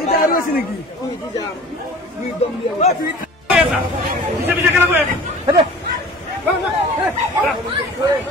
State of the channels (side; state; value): both; normal; correlation 0.43